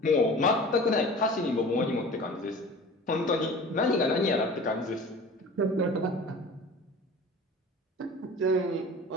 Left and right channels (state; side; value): normal; both; correlation 0.40